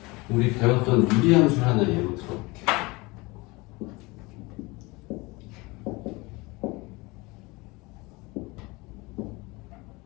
우리 배웠던 유리함수 하나 예로 들어볼게.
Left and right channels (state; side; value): quieter; right; 24.1 dB